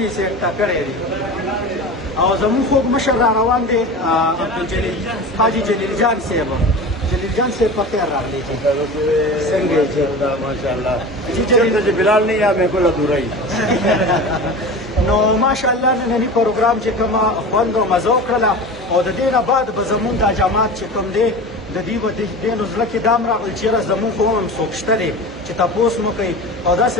یې سیټ کړی دی او زموږ خوږ مشر را روان دی عبدالجلیل حاجي جلیل جان صاحب. جلیل جان صاحب په خیر راغلی چې څنګه یې چې ماشاءالله چې بلال نه یا مې کوله دورای نو ماشاءالله نننی پروګرام چې کومه خوند او مزه وکړله او د دې نه بعد به زمونږ دا جماعت چې کوم دی د دې به دې نو زړه کې دام راغلی چېرې زمونږ خو هم څوک شته دی چې تپوس مو کوي او داسې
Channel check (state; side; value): normal; both; correlation 0.32